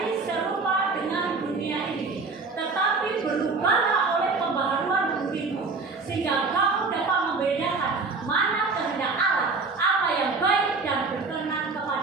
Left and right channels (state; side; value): quieter; left; 4.2 dB